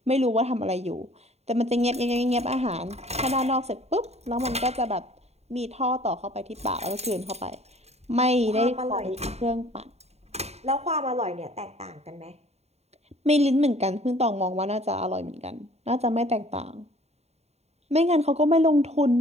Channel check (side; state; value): left; late; 0.31 ms